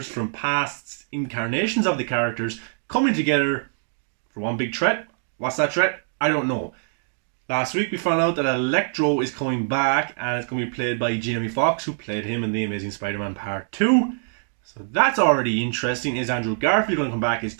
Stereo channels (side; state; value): left; silent; digital silence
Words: from past incarnations of the characters coming together for one big threat. What's that threat? I don't know. Last week we found out that Electro is coming back and it's going to be played by Jamie Foxx, who played him in The Amazing Spider-Man Part 2. So that's already interesting. Is Andrew Garfield going to come back? Is